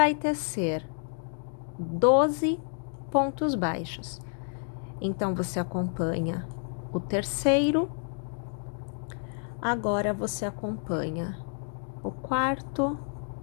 tecer 12 pontos baixos. Então, você acompanha o terceiro, agora você acompanha o quarto,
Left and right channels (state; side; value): silent; right; 58 dB below the other